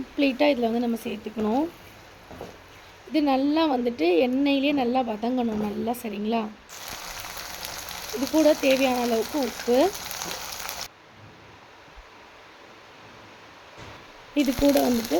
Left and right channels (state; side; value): identical; both; correlation 1.00